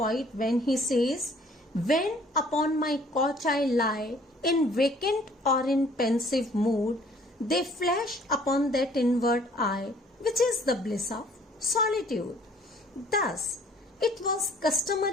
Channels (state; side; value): normal; both; correlation 0.57